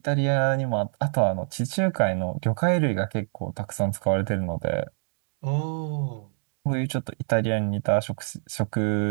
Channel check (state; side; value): silent; left; 61 dB below the other